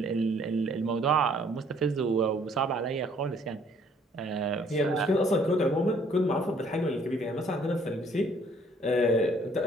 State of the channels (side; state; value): both; normal; correlation 0.61